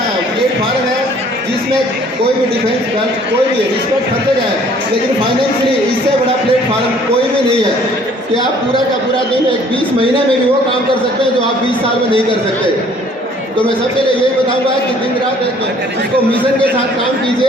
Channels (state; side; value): normal; both; correlation 0.57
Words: प्लेटफॉर्म है जिसमें कोई भी डिफेंस कोई भी रिस्पेक्ट करते जाए, लेकिन फाइनेंशियली इससे बड़ा प्लेटफॉर्म कोई भी नहीं है कि आप पूरा का पूरा दिन एक 20 महीने में भी वो काम कर सकते हैं जो आप 20 साल में नहीं कर सकते। तो मैं सबके लिए यही बताऊंगा कि दिन रात इसको मिशन के साथ काम